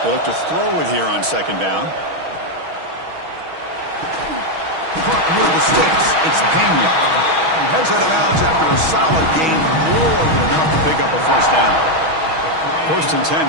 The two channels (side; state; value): left; late; 6.3 ms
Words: They look to throw it here on second down. Caught near the sticks. It's Pena. Heads out of bounds after a solid gain. More than enough to pick up a first down. 1st and